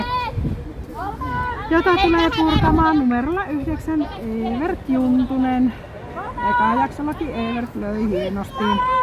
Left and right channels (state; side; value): identical; both; correlation 1.00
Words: jota tulee purkamaan numerolla 9 Evert Juntunen. Eka jaksollakin Evert löi hienosti.